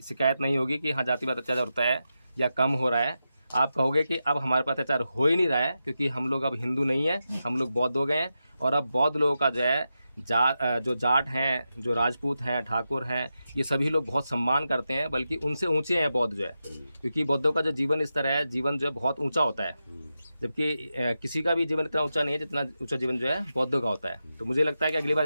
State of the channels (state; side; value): inverted; both; correlation -0.89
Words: शिकायत नहीं होगी कि हाँ जातिवाद अत्याचार होता है या कम हो रहा है। आप कहोगे कि अब हमारे पास अत्याचार हो ही नहीं रहा है, क्योंकि हम लोग अब हिंदू नहीं है, हम लोग बौद्ध हो गए हैं। और अब बौद्ध लोगों का जो है जो जाट हैं, जो राजपूत हैं, ठाकुर हैं, ये सभी लोग बहुत सम्मान करते हैं, बल्कि उनसे ऊंचे हैं बौद्ध जो है, क्योंकि बौद्धों का जो जीवन स्तर है, जीवन जो है बहुत ऊंचा होता है, जबकि किसी का भी जीवन इतना ऊंचा नहीं है जितना ऊंचा जीवन जो है बौद्धों का होता है। तो मुझे लगता है कि अगली बार